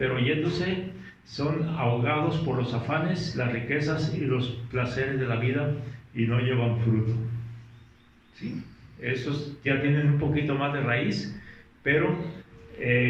oyéndose son ahogados por los afanes, las riquezas y los placeres de la vida y no llevan fruto. ¿Sí? Estos ya tienen un poquito más de raíz, pero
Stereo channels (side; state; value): both; identical; correlation 1.00